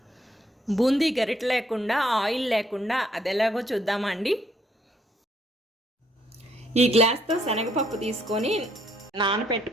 బూందీ గరిట లేకుండా, ఆయిల్ లేకుండా అది ఎలాగో చూద్దామా అండి. ఈ గ్లాస్తో శనగపప్పు తీసుకొని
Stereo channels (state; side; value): normal; both; correlation 0.69